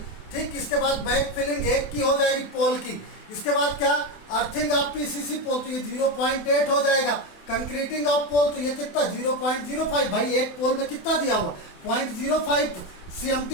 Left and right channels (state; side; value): late; right; 28 ms